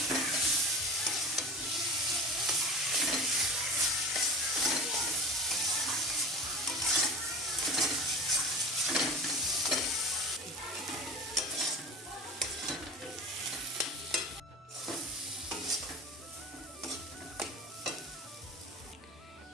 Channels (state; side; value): normal; both; correlation 0.34